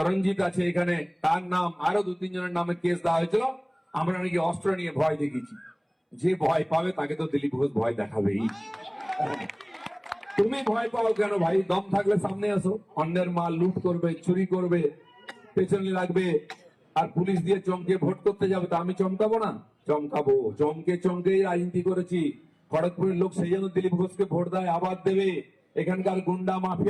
আছে এখানে, তার নাম, আরো 2-3 জনের নামে কেস দেওয়া হয়েছিল। আমরা নাকি অস্ত্র নিয়ে ভয় দেখিয়েছি। যে ভয় পাবে তাকে তো দিলীপ ঘোষ ভয় দেখাবেই। তুমি ভয় পাও কেন ভাই? দম থাকলে সামনে আসো। অন্যের মাল লুট করবে, চুরি করবে, পেছনে লাগবে, আর পুলিশ দিয়ে চমকে ভোট করতে যাবে, তা আমি চমকাবো না? চমকাবো। চমকে চমকে রাজনীতি করেছি। খড়গপুরের লোক সেই জন্য দিলীপ ঘোষকে ভোট দেয়, আবার দেবে। এখানকার গুন্ডা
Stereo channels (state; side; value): identical; both; correlation 1.00